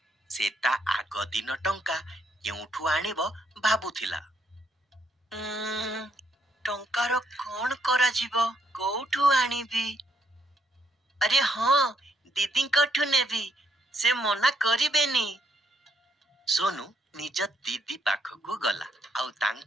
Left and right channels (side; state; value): both; normal; correlation 0.75